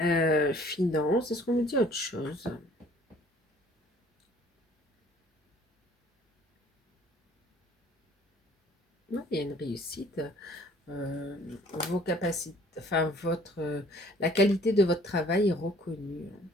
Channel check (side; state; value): both; normal; correlation 0.56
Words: finance, est-ce qu'on me dit autre chose? Ouais, il y a une réussite. euh, Vos capacités, enfin la qualité de votre travail est reconnue.